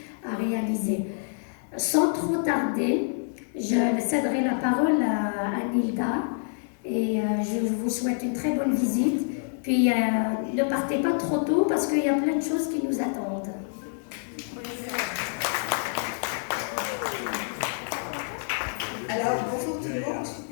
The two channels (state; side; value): silent; right; digital silence